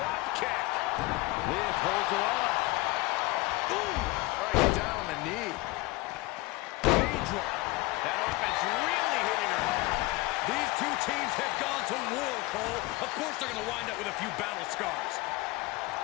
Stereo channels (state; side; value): quieter; right; 21.8 dB